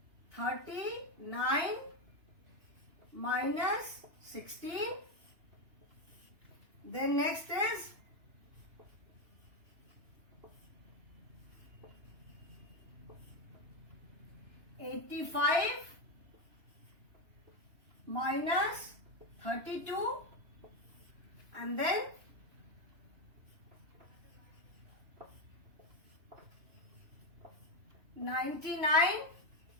39 minus 16. Then next is 85 minus 32, and then 99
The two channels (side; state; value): left; late; 3.0 ms